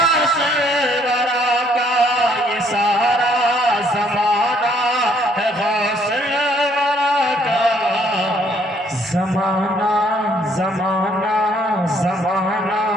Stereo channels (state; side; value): normal; both; correlation 0.65